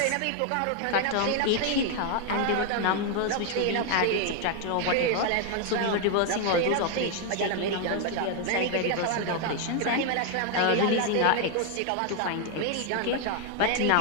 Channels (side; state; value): both; different; correlation 0.01